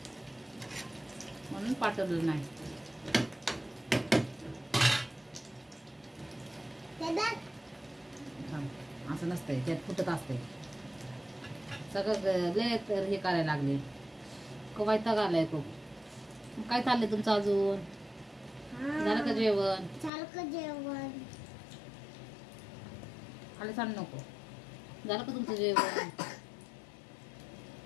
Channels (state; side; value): drops out; right; at 20.1 s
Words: म्हणून पाठवलं नाही. असं नसतंय, त्यात फुटत असते सगळं. लय हे करायला लागले, वैताग आलाय खूप. काय चाललंय तुमचं अजून? झालं का जेवण? खाली सांग नको. झालं का तुमचं जेवण?